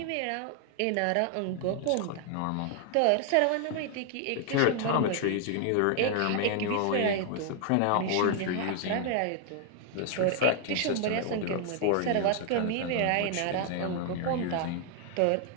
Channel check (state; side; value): different; both; correlation 0.00